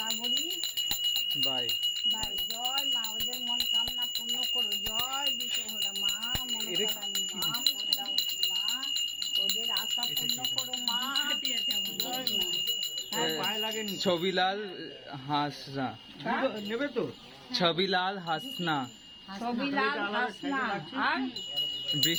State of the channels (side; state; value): both; identical; correlation 1.00